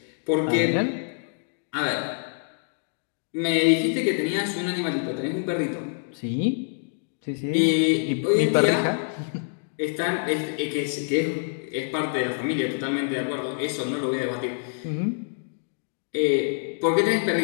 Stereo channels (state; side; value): silent; right; digital silence